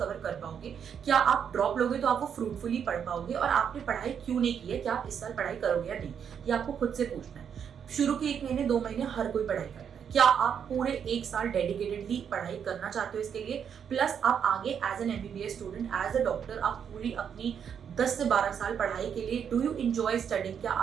कर पाओगे, क्या आप ड्रॉप लोगे तो आप वो फ्रूटफुली पढ़ पाओगे, और आपने पढ़ाई क्यों नहीं की है, क्या आप इस साल पढ़ाई करोगे या नहीं, ये आपको खुद से पूछना है. शुरू के 1 महीने 2 महीने हर कोई पढ़ाई करता है। क्या आप पूरे 1 साल डेडिकेटेडली पढ़ाई करना चाहते हो इसके लिए, प्लस आप आगे as an MBBS student, as a doctor आप पूरी अपनी 10 से 12 साल पढ़ाई के लिए, डू यू एंजॉय स्टडिंग, क्या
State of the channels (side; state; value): left; quieter; 7.8 dB